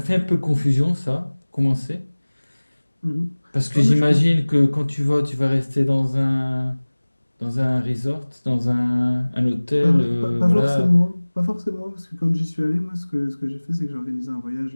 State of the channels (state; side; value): inverted; both; correlation -1.00